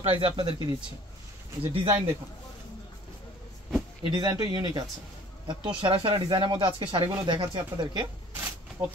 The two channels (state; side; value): normal; both; correlation 0.51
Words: প্রাইসে আপনাদেরকে দিচ্ছি। এই যে ডিজাইন দেখুন, এই ডিজাইনটা ইউনিক আছে। এত সেরা সেরা ডিজাইনের মধ্যে আজকে শাড়িগুলো দেখাচ্ছি আপনাদেরকে,